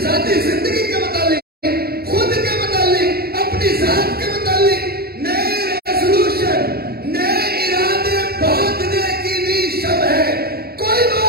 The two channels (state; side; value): late; left; 0.45 ms